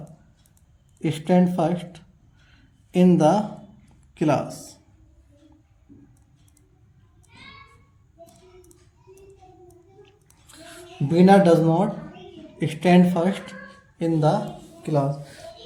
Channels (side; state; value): both; identical; correlation 1.00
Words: stand first in the class. Bina does not stand first in the class.